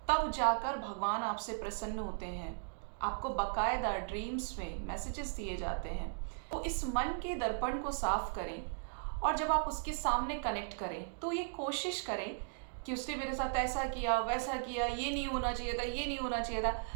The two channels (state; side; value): silent; left; digital silence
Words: तब जाकर भगवान आपसे प्रसन्न होते हैं। आपको बकायदा ड्रीम्स में मैसेजेस दिए जाते हैं। तो इस मन के दर्पण को साफ करें, और जब आप उसके सामने कनेक्ट करें तो ये कोशिश करें कि उसने मेरे साथ ऐसा किया, वैसा किया, ये नहीं होना चाहिए था, ये नहीं होना चाहिए था।